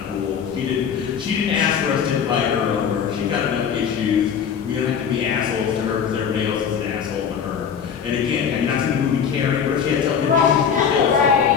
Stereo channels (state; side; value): quieter; right; 7.4 dB